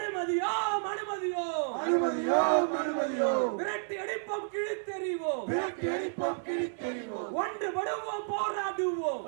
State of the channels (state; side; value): silent; left; digital silence